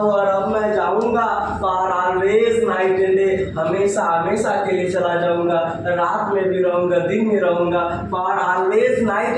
और अब मैं जाऊंगा. For always night and day, हमेशा हमेशा के लिए चला जाऊंगा, रात में भी रहूंगा, दिन में रहूंगा, for always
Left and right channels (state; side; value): identical; both; correlation 1.00